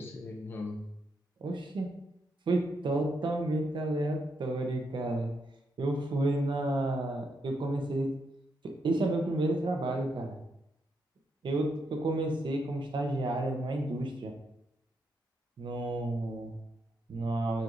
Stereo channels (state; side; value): normal; both; correlation 0.80